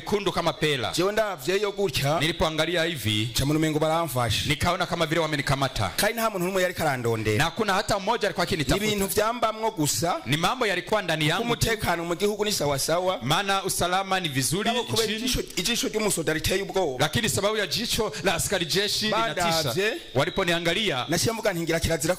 kama pela. jewe ndavyeyo gutya, Nilipoangalia hivi nca mu mengo baramfashe, nikaona kama vile wamenikamata, kandi nta muntu n'umwe yariko arandondera, na kuna hata mmoja alikuwa akinitafuta. ibintu vyambamwo gusa, Ni mambo yalikuwa ndani yangu, umutekano mu gihugu ni sawa sawa, maana usalama ni vizuri kubera nchini, ijisho ry'umusoda riteye ubwoba, lakini sababu ya jicho jicho la askari jeshi linatisha. Badavye. Waliponiangalia nashimuga ntingira kirazira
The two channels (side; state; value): both; identical; correlation 1.00